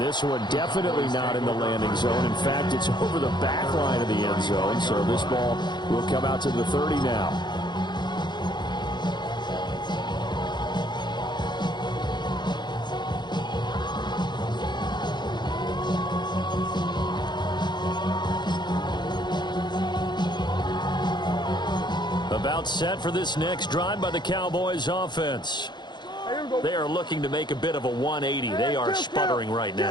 this one definitely not in the landing zone. In fact, it's over the back line of the end zone. So this ball will come out to the 30 now. About set for this next drive by the Cowboys offense. They are looking to make a bit of a 180. They are sputtering right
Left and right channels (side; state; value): right; late; 0.21 ms